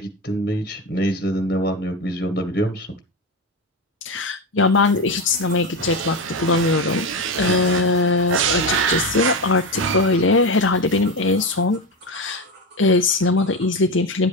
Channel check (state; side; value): normal; both; correlation 0.17